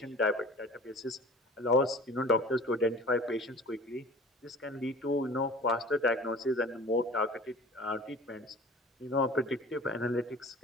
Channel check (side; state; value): both; normal; correlation 0.43